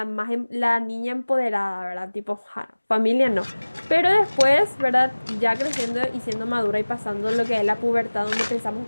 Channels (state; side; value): inverted; both; correlation -1.00